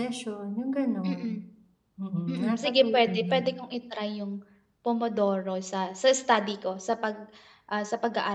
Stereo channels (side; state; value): both; identical; correlation 1.00